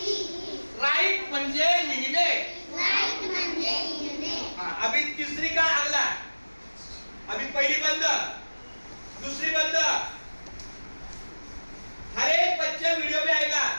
राइट म्हणजे लिहिणे. अभी तीसरी का अगला. अभी पहली बंद, दूसरी बंद. हर एक बच्चा वीडियो में आएगा.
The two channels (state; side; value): inverted; both; correlation -1.00